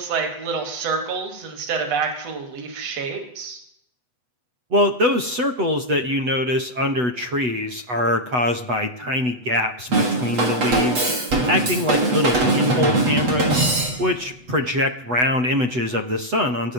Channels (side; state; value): left; late; 8.1 ms